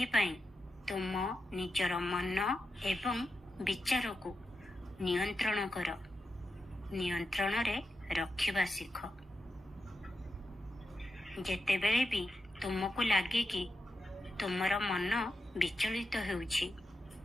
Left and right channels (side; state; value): both; normal; correlation 0.89